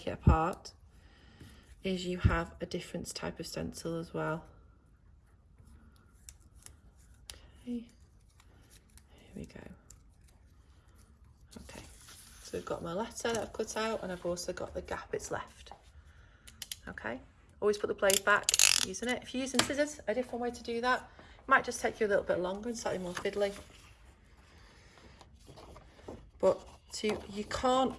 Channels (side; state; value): both; identical; correlation 1.00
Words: it apart is you have a different type of stencil as well. Okay, here we go. Okay, so we've got my letter that I've cut out, and I've also got the gap it's left. Okay, always put the blade back using it. If you're using scissors, a different way to do that. It might just take you a little bit longer and slightly more fiddly. But you can't